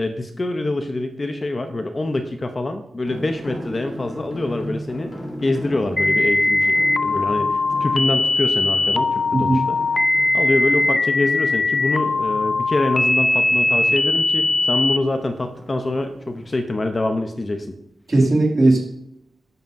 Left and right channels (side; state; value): both; normal; correlation 0.96